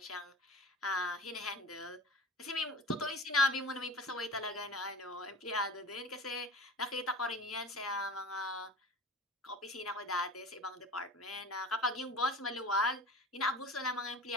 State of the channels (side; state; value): both; normal; correlation 0.37